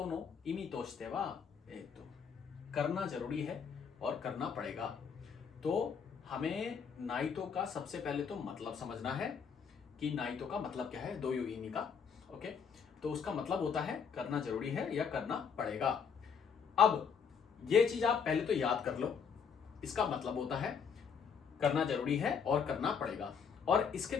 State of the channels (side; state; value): right; quieter; 6.6 dB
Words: の意味としては、करना जरूरी है और करना पड़ेगा। तो हमें नाइटो का सबसे पहले तो मतलब समझना है कि नाइटो का मतलब क्या है, दो युगिनी का। ओके, तो उसका मतलब होता है करना जरूरी है या करना पड़ेगा। अब ये चीज आप पहले तो याद कर लो, इसका मतलब होता है करना जरूरी है और करना पड़ेगा, और इसके